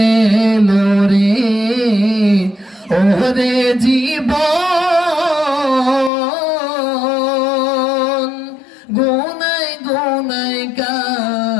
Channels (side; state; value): right; drops out; at 6.1 s